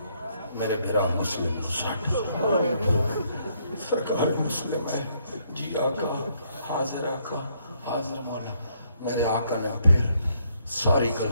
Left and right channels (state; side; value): inverted; both; correlation -0.71